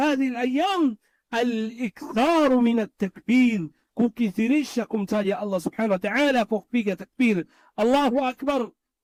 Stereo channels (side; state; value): both; identical; correlation 1.00